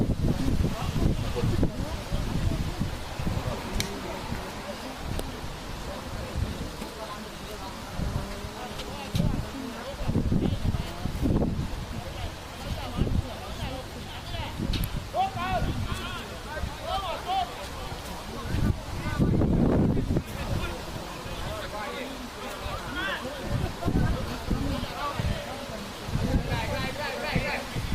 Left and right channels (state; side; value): identical; both; correlation 1.00